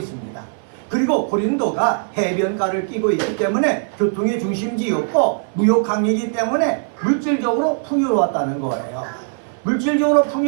그리고 고린도가 해변가를 끼고 있기 때문에 교통의 중심지였고 무역항이기 때문에 물질적으로 풍요로웠다는 거예요. 물질적으로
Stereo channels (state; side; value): silent; left; 56 dB below the other